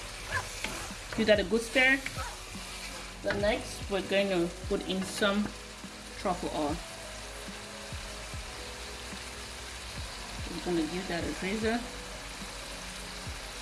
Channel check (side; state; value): both; identical; correlation 1.00